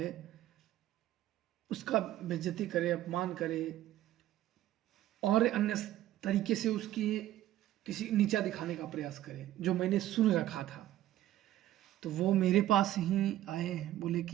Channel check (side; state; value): left; quieter; 13.7 dB